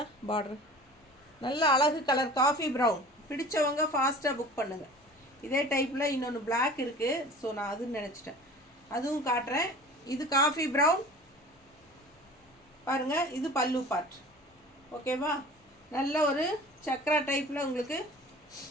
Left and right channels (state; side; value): normal; both; correlation 0.41